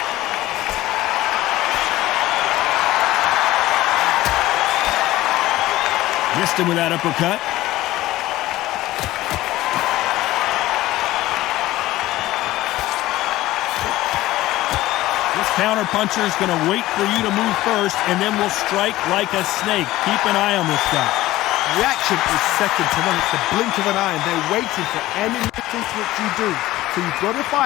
Missed him with that uppercut. This counter puncher is going to wait for you to move first and then will strike like a snake. Keep an eye on this guy. Reaction is second to none. It's the blink of an eye, and they're waiting for any resistance that you do. So you've got to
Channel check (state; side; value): quieter; right; 16.6 dB